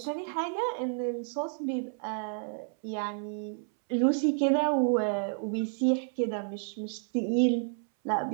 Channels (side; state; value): left; silent; 58 dB below the other